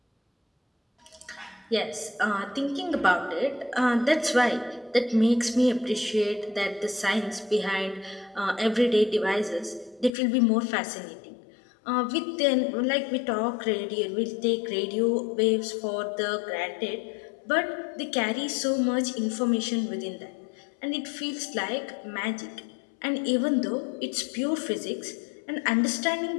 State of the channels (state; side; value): drops out; right; at 10.1 s